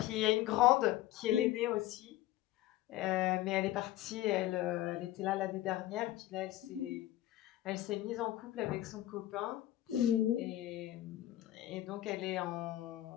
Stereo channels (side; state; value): right; quieter; 14.6 dB